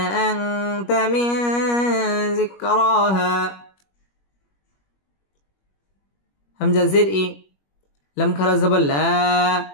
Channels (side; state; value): right; late; 21 ms